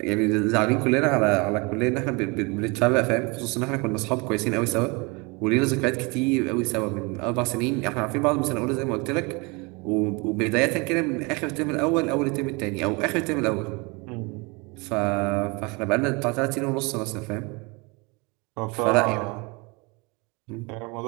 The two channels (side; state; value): left; quieter; 28.3 dB